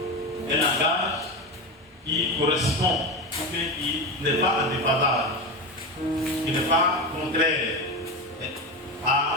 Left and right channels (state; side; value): normal; both; correlation 0.20